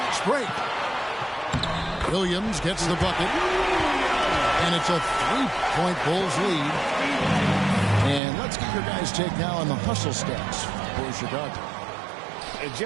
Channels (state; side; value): drops out; left; at 8.2 s